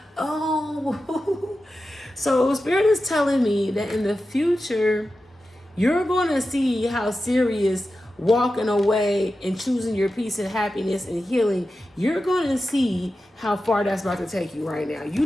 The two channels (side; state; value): both; normal; correlation 0.92